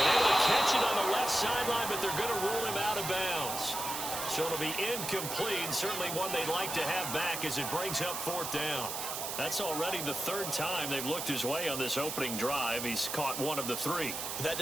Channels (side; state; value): right; noise; hiss, 4 dB below the sound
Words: able to catch it on the left sideline, but they're going to rule him out of bounds. So it'll be incomplete, certainly one they'd like to have back as it brings up 4th down. That's already the 3rd time they've looked his way on this opening drive. He's caught 1 of the 3. But that